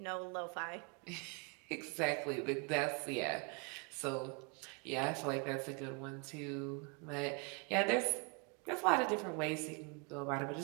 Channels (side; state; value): left; quieter; 33.0 dB